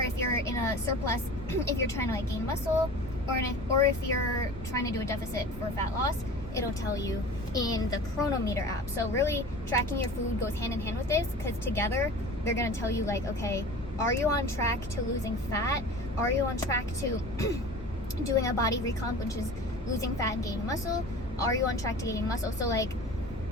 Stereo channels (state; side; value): normal; both; correlation 0.38